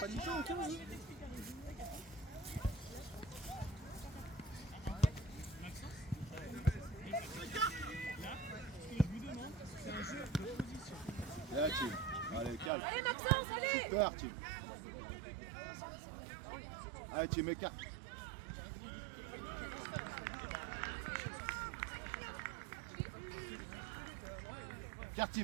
du tout, ok, vas-y. Là, Tim. Allez, calme. Allez Maxence, allez. Super, Tim. Allez, Tim, écarte. Écarte,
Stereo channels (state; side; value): drops out; left; at 12.7 s